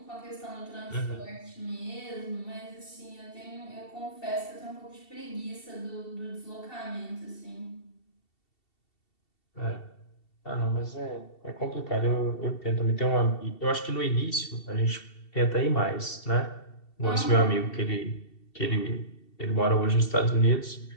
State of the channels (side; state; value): right; late; 2.7 ms